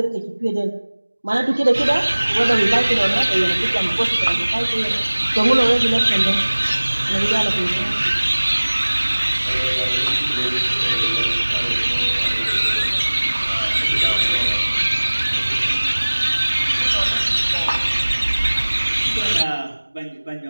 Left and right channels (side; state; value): both; inverted; correlation -1.00